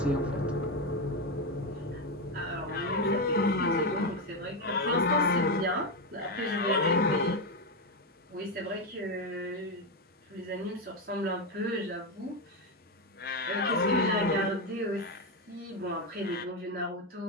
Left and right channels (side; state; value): both; normal; correlation 0.10